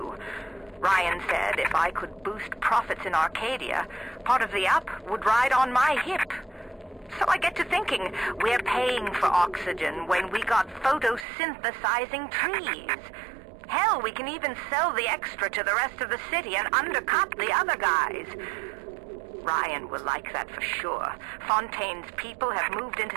Ryan said if I could boost profits in Arcadia, part of the up would ride on my hip. So I get to thinking, we're paying for oxygen when we got photosynthesizing trees. Hell, we can even sell the extra to the rest of the city and undercut the other guys. Ryan will like that for sure. Fontaine's people have moved into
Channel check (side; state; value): left; drops out; at 11.2 s